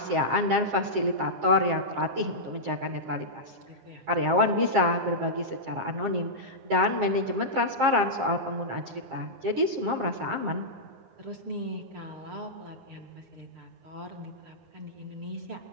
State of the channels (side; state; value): left; late; 9.7 ms